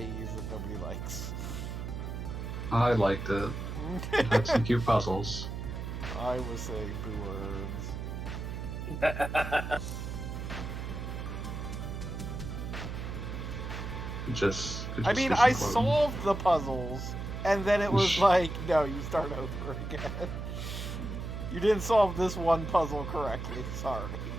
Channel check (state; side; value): noise; right; hum, 5 dB below the sound